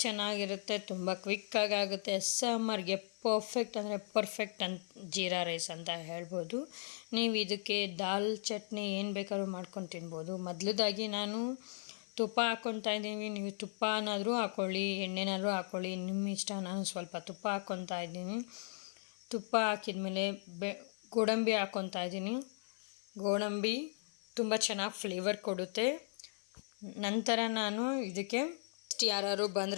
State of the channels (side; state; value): right; silent; 53 dB below the other